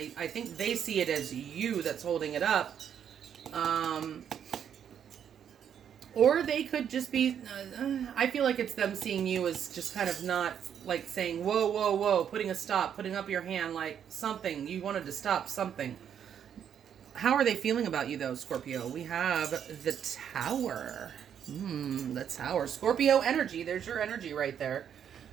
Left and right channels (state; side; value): quieter; left; 8.7 dB